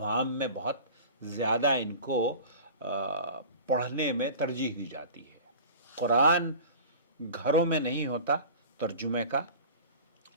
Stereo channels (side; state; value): both; inverted; correlation -0.38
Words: میں بہت زیادہ ان کو پڑھنے میں ترجیح دی جاتی ہے. قرآن گھروں میں نہیں ہوتا ترجمے کا.